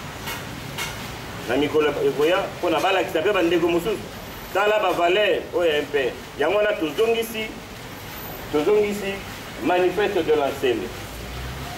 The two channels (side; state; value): both; identical; correlation 1.00